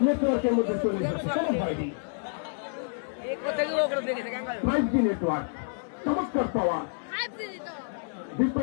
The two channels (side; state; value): right; silent; 59 dB below the other